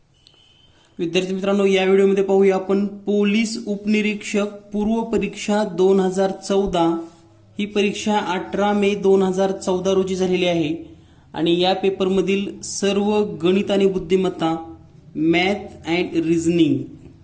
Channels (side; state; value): both; identical; correlation 1.00